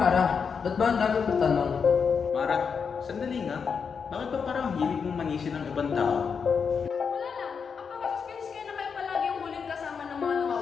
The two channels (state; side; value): quieter; right; 6.1 dB